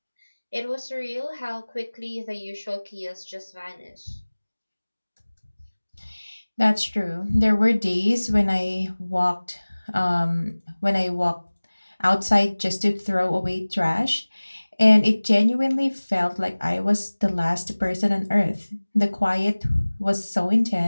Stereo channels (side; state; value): both; inverted; correlation -1.00